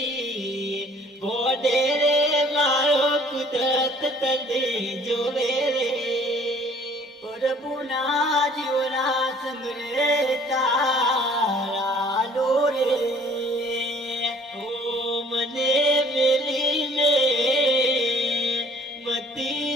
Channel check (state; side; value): normal; both; correlation 0.54